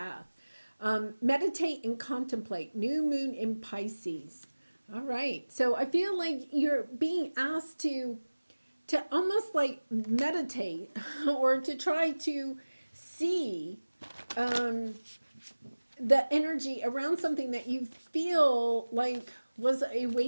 Meditate and contemplate. New moon in Pisces. All right. So I feel like you're being asked to almost like meditate or to try to see the energy around something that you feel like was a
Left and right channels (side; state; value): both; inverted; correlation -1.00